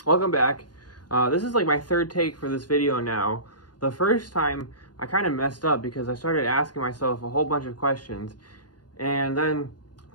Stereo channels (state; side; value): late; right; 0.70 ms